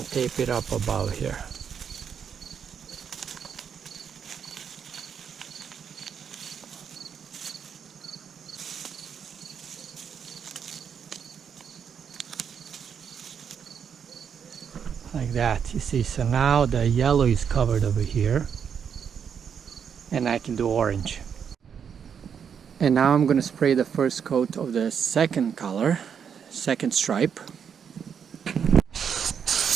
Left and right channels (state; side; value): quieter; left; 7.4 dB